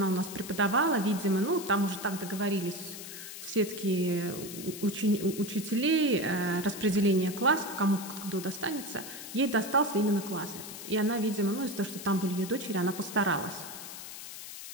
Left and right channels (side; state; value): left; noise; hiss, 11 dB below the sound